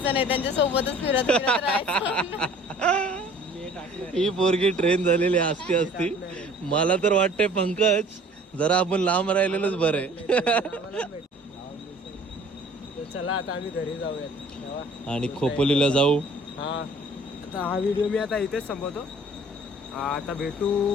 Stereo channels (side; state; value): both; normal; correlation 0.51